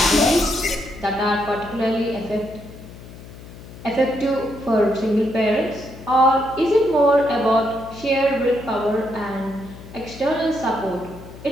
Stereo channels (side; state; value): left; noise; hum, 16 dB below the sound